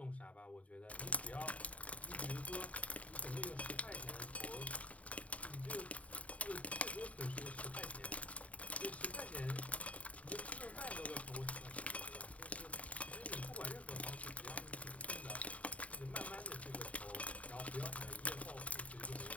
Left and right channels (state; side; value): late; right; 0.067 ms